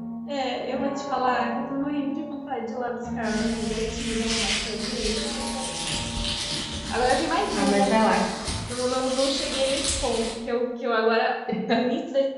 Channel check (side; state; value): both; identical; correlation 1.00